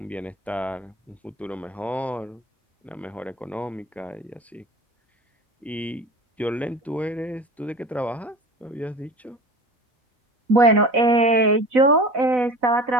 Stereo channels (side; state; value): both; normal; correlation 0.36